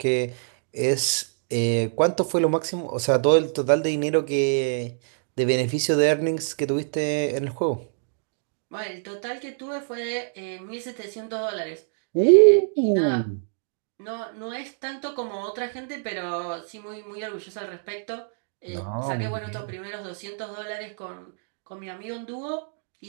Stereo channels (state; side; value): silent; left; digital silence